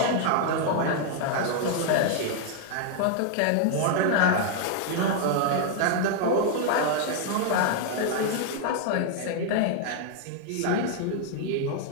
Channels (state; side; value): different; both; correlation 0.00